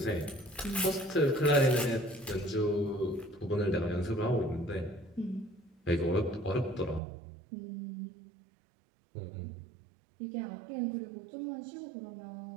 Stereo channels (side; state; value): left; drops out; at 7.0 s